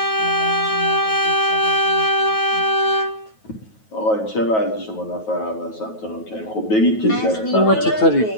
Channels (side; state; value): right; late; 9.3 ms